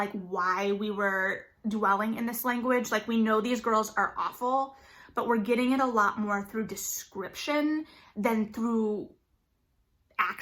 why we were dwelling in this language. Like, we know these girls are awful, but we're getting it a lot more through description than through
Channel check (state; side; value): identical; both; correlation 1.00